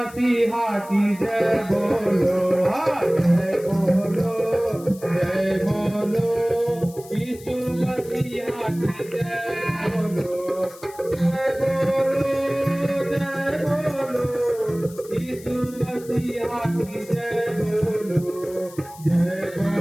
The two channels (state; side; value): noise; left; hiss, 20 dB below the sound